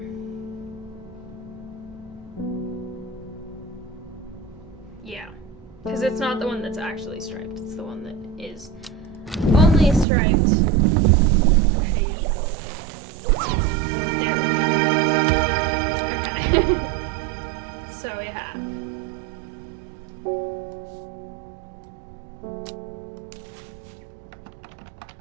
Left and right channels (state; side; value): drops out; left; at 10.1 s